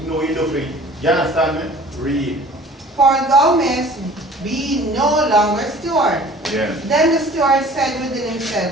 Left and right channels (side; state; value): both; normal; correlation 0.48